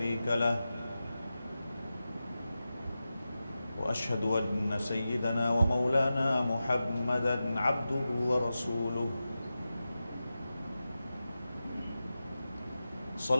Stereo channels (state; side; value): inverted; both; correlation -0.93